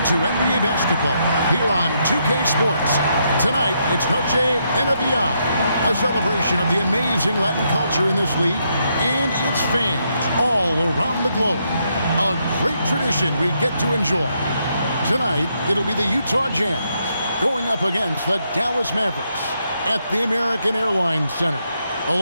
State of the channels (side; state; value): both; inverted; correlation -0.77